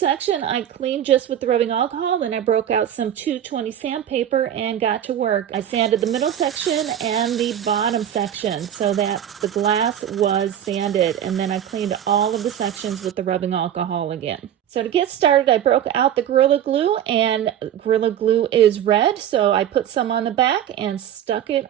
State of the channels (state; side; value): quieter; left; 10.3 dB